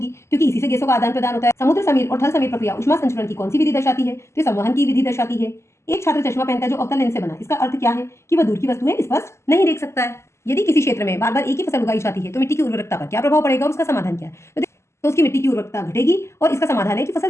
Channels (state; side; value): late; right; 0.13 ms